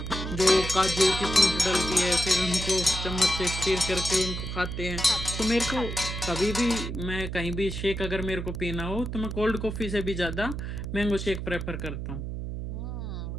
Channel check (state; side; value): noise; right; hum, 5 dB below the sound